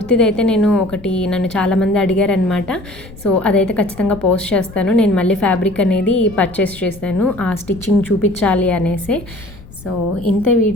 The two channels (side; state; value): left; noise; rumble, 18 dB below the sound